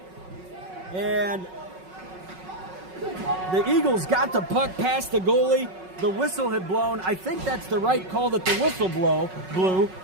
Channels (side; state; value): left; late; 5.4 ms